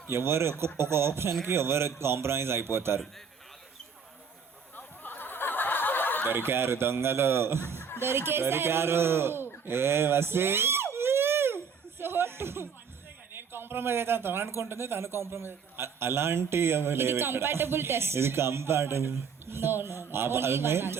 ఎవరు ఒక ఆప్షన్కి ఎవరు కాంప్రమైజ్ అయిపోతారు. దొరికారు దొంగలు, దొరికారు. ఏ వసి సో నేను కాంప్రమైజ్ అయితే తను అనుకుంటుంది, తను కాంప్రమైజ్ అయితే అలాంటి ఏమీ లేవు ఇక్కడ. Compatible test. ఇది compatible. No no only one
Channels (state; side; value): quieter; left; 6.1 dB